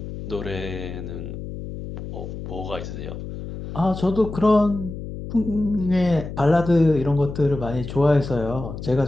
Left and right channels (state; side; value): noise; left; hum, 9 dB below the sound